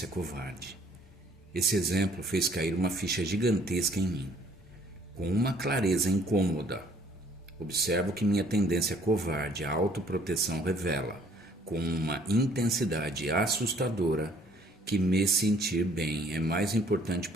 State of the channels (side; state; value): both; normal; correlation 0.60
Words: covarde. Esse exemplo fez cair uma ficha gigantesca em mim, com uma clareza incômoda. Observo que minha tendência covarde à autoproteção revela, com uma intensidade assustadora, que me sentir bem é mais importante